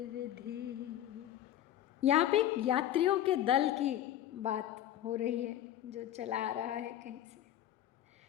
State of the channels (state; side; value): quieter; right; 11.8 dB